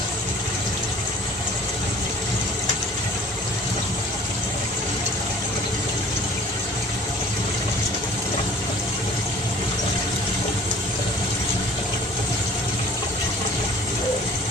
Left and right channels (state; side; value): normal; both; correlation 0.50